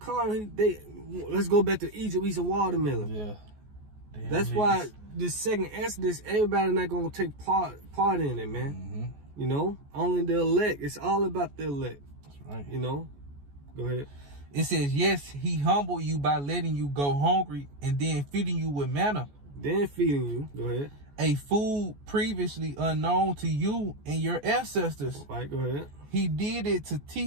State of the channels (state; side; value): late; left; 14 ms